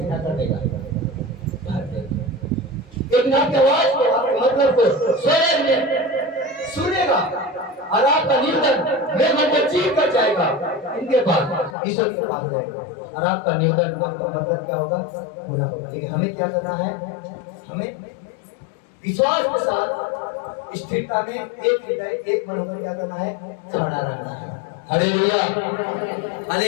कर देगा। एक नाम की आवाज को, आपके मतलब को स्वयं में सुनेगा, और आपका निवेदन मैं मतलब चीख कर जाएगा इनके पास, ईश्वर के पास जाएगा, और आपका निवेदन का मतलब क्या होगा? पूरा होगा। लेकिन हमें क्या करना है? हमें विश्वास के साथ स्थिरता में एक हृदय एक मन होकर क्या करना है? खड़ा रहना है। Hallelujah,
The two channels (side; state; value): right; drops out; at 11.8 s